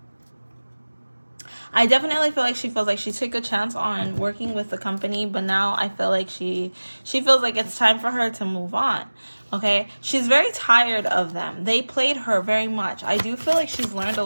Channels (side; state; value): both; inverted; correlation -1.00